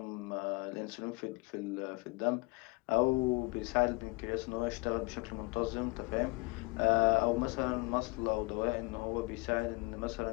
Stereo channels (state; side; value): quieter; right; 27.3 dB